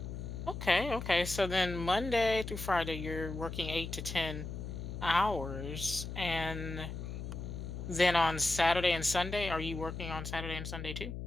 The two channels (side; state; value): left; noise; hum, 7 dB below the sound